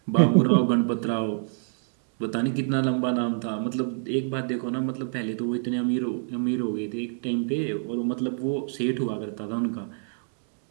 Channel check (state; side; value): silent; left; digital silence